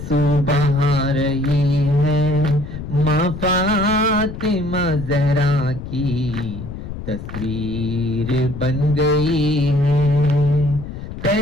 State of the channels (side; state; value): left; noise; rumble, 10 dB below the sound